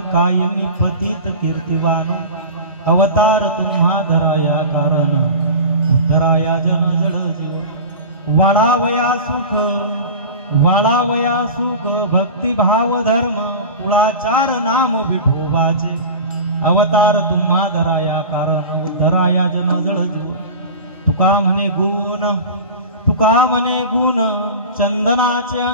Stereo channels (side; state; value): both; inverted; correlation -0.31